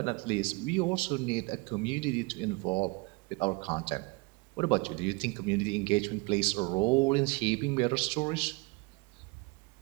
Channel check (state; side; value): quieter; left; 26.7 dB